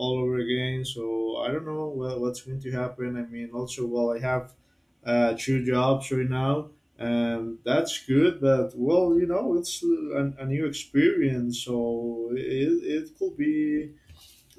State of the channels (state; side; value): identical; both; correlation 1.00